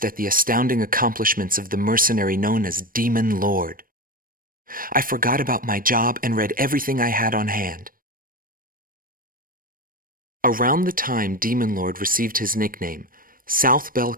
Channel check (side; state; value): left; late; 0.41 ms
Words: at the astounding accomplishments of the mercenary known as Demon Lord. I forgot about my job and read everything I had on hand. Around the time Demon Lord received his nickname, South